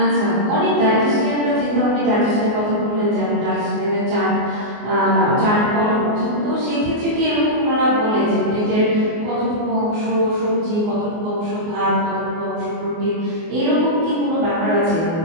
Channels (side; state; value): left; late; 24 ms